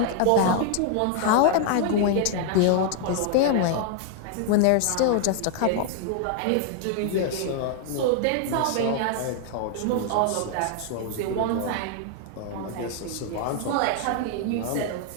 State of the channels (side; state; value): both; different; correlation 0.00